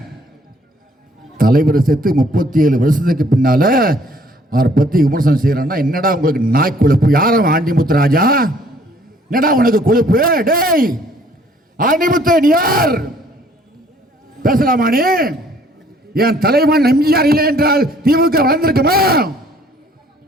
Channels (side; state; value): both; normal; correlation 0.60